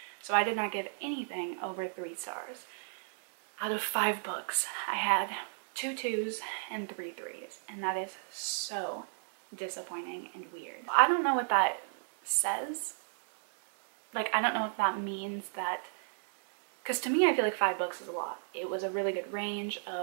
So I did not give anything over 3 stars. Out of 5 books, I had 2 2s and 3 3s, and that is so disappointing and weird. I don't know what that says. Like, I don't know if that means that, because to me, I feel like 5 books is a lot. It was a really good range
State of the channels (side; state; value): left; silent; digital silence